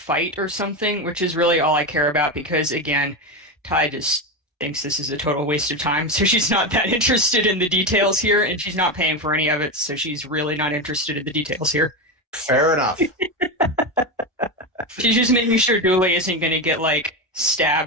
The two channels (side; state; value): both; normal; correlation 0.15